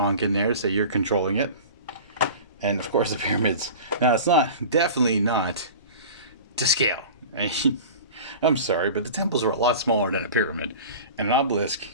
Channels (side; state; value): both; inverted; correlation -0.37